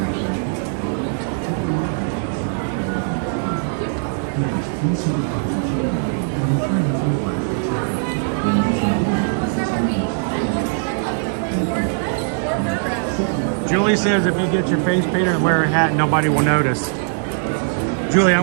Julie says if you get your face painted and wear a hat, nobody will notice. Julie, I'm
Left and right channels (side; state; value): left; silent; digital silence